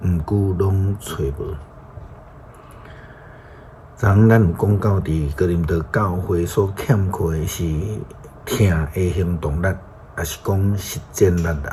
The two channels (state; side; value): identical; both; correlation 1.00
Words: 毋久拢找无。咱有讲到伫哥林多教会所欠缺的是听的行动力，也是讲实践力